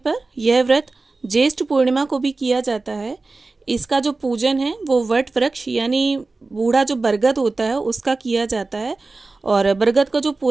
यह व्रत ज्येष्ठ पूर्णिमा को भी किया जाता है। इसका जो पूजन है वो वट वृक्ष यानी बूढ़ा जो बरगद होता है उसका किया जाता है और बरगद का जो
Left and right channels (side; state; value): left; quieter; 3.6 dB